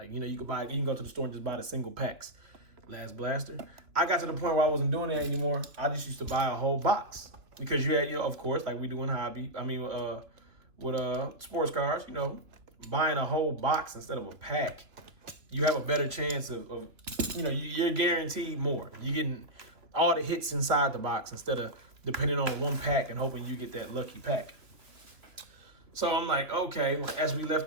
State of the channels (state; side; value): late; left; 2.8 ms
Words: you can go to the store and just buy the single packs. Last blaster. I got to the point where I wasn't doing that anymore. I just used to buy a whole box. Because you had, of course, like we do in hobby. With sports cars, buying a whole box instead of a pack, you have a better chance of you're guaranteed more. You're getting all the hits inside the box instead of depending on one pack and hoping you get that lucky pack. So I'm like, okay. As we